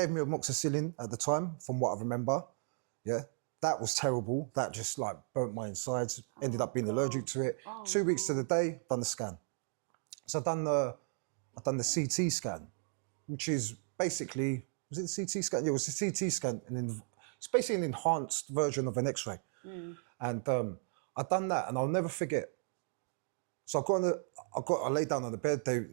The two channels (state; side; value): silent; left; 54 dB below the other